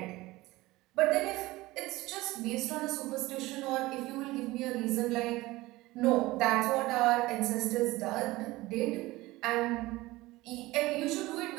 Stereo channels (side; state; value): left; quieter; 19.4 dB